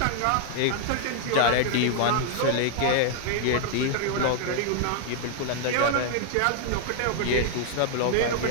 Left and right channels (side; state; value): both; different; correlation 0.00